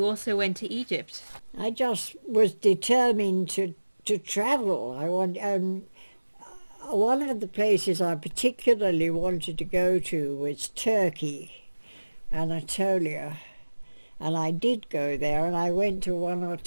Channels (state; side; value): inverted; both; correlation -1.00